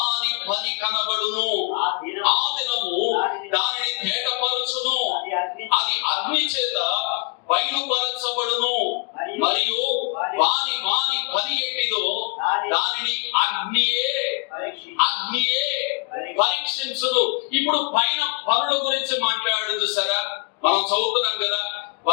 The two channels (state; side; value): quieter; right; 30.7 dB